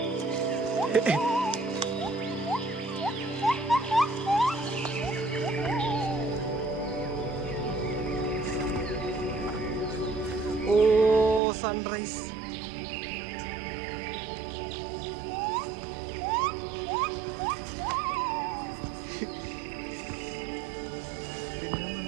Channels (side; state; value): left; drops out; at 11.4 s